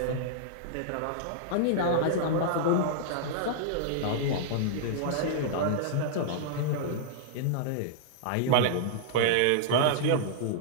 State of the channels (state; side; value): different; both; correlation -0.02